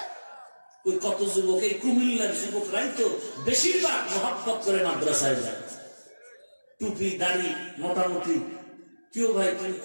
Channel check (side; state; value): both; inverted; correlation -1.00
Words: ওই কত যুবক, এই কুমিল্লার যুবকরাই তো বেশিরভাগ মহব্বত করে মাদ্রাসায় যায়, টুপি দাড়ি মোটামুটি। কেউ ভাই তুমি